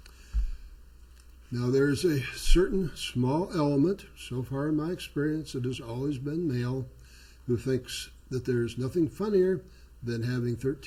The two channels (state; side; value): identical; both; correlation 1.00